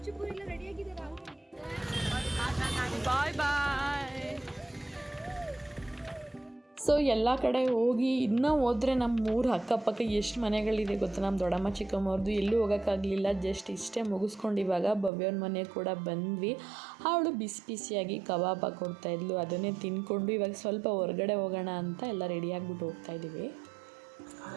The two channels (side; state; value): left; drops out; at 15.1 s